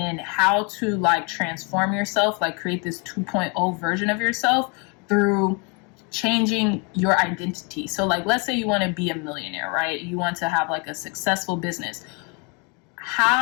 how to like transform yourself, like create this 2.0 version of yourself through changing your identity. So like, let's say you want to be a millionaire, right? You want to have like a successful business.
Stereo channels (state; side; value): quieter; right; 33.1 dB